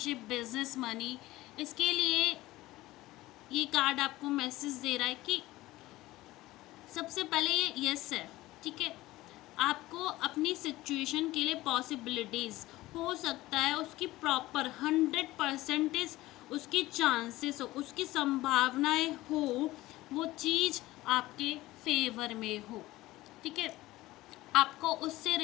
बिजनेस, मनी, इसके लिए ये कार्ड आपको मैसेज दे रहा है कि सबसे पहले ये यस है। ठीक है, आपको अपनी सिचुएशन के लिए पॉसिबिलिटीज़ हो सकता है उसकी प्रॉपर 100% उसकी चांसेस हो, उसकी संभावनाएं हो, वो चीज़ आपके फेवर में हो। ठीक है, आपको उससे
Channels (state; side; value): quieter; right; 17.7 dB